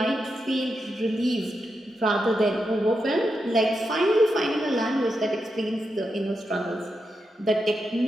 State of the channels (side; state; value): both; normal; correlation 0.86